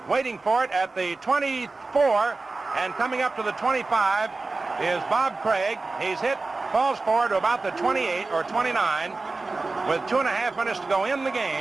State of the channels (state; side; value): quieter; left; 3.6 dB